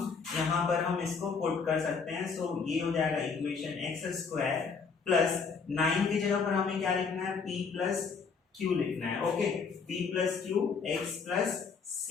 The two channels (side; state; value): right; quieter; 5.4 dB